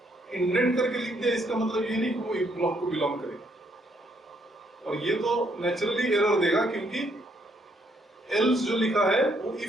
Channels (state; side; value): normal; both; correlation 0.71